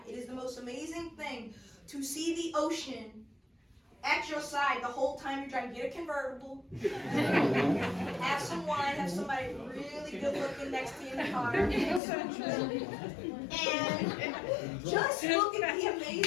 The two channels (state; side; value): drops out; right; at 12.0 s